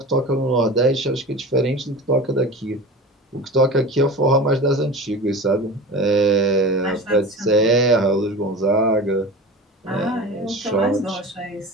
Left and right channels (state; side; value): normal; both; correlation 0.33